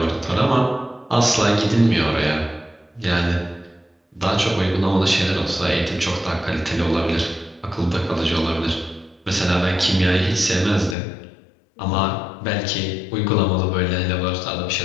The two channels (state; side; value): drops out; right; at 11.0 s